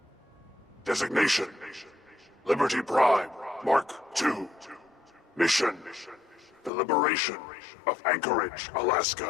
Designation. Liberty Prime, Mark II. Mission. The liberation of Anchorage,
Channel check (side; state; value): right; drops out; at 6.7 s